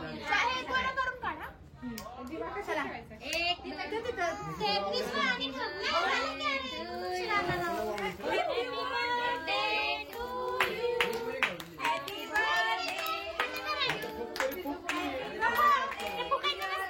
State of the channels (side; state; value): both; identical; correlation 1.00